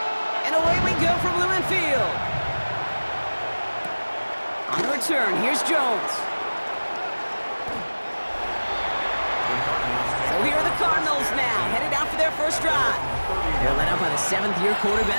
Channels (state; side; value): inverted; both; correlation -1.00